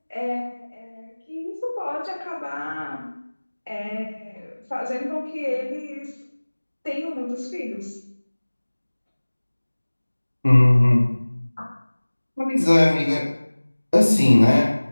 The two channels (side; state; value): both; inverted; correlation -1.00